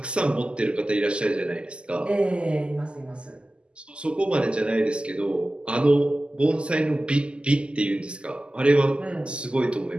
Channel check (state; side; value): late; left; 0.051 ms